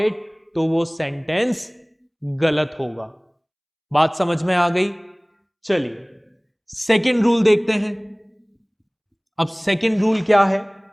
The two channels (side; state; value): both; identical; correlation 1.00